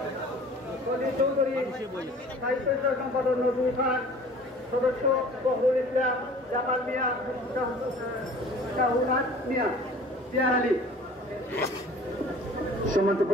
সলিল চৌধুরী, সাহিত্য সম্পাদক নজরুল খান, সদস্য বহরুল ইসলাম, জামাল মিয়া, শাহুনাথ মিয়া, জিয়া আলী। সম্মানিত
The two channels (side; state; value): both; normal; correlation 0.47